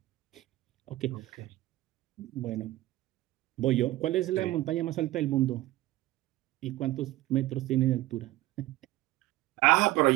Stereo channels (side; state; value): left; quieter; 16.9 dB